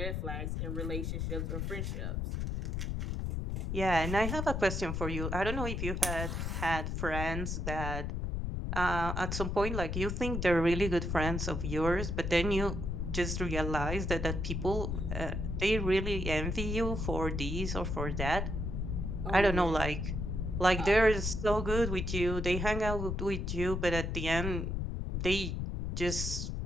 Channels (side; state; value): left; noise; rumble, 2 dB below the sound